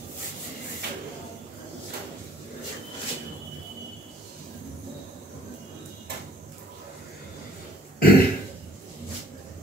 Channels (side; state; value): both; normal; correlation 0.58